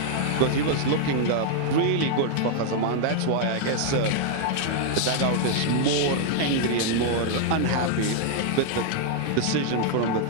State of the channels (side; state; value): both; different; correlation 0.00